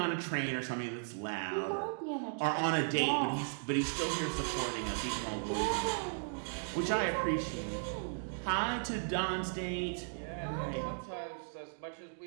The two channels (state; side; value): silent; left; digital silence